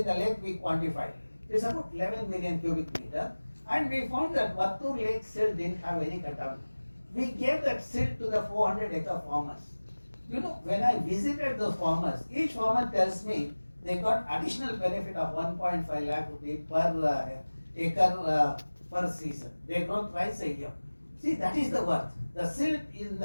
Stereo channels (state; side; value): inverted; both; correlation -1.00